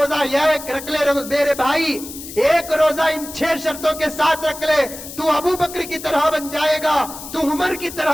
یہ رکھ لے میرے بھائی، ایک روزہ ان 6 شرطوں کے ساتھ رکھ لے، تو ابو بکر کی طرح بن جائے گا، تو عمر کی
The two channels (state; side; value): noise; left; hiss, 12 dB below the sound